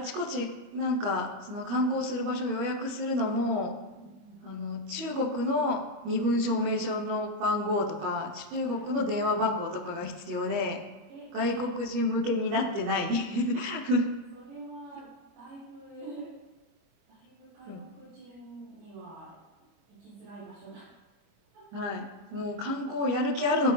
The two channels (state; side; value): late; left; 25 ms